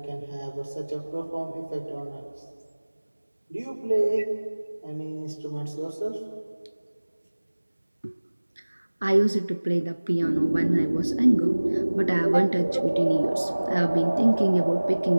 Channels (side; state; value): both; inverted; correlation -1.00